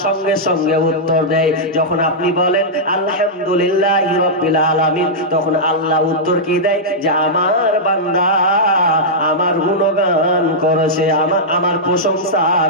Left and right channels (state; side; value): normal; both; correlation -0.09